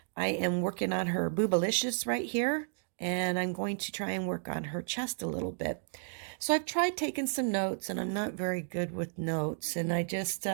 I am working on her Boobalicious right here, and I'm going to try and work on her chest a little bit. So I've tried taking some notes, and I'm not very good with notes, and I just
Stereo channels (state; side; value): silent; left; digital silence